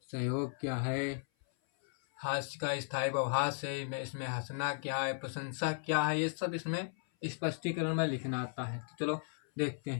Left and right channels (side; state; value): right; silent; 54 dB below the other